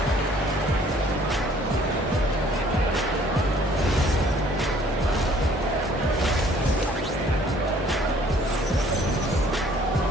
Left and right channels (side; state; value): both; normal; correlation 0.58